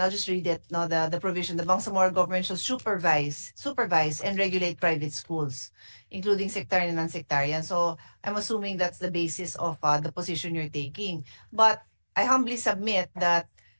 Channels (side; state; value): both; inverted; correlation -1.00